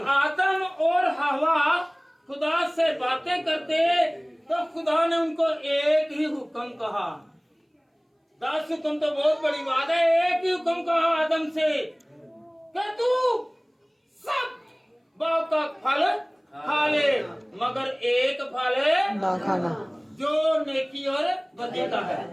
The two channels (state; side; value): identical; both; correlation 1.00